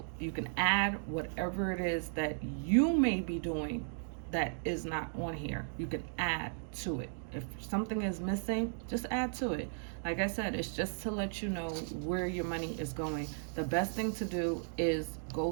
You can add whatever it is that you may be doing that is not on here. You can add to it. If something is missing, just add to it. Like I said, it's just to let you know where your money is going. The best thing to do is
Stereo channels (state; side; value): silent; left; digital silence